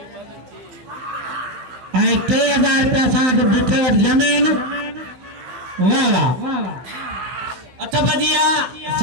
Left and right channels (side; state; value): left; late; 16 ms